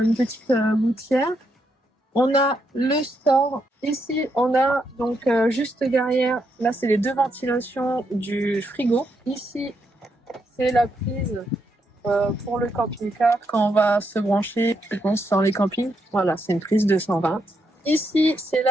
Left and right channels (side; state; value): both; normal; correlation 0.79